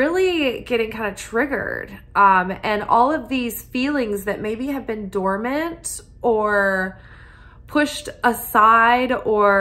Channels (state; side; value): identical; both; correlation 1.00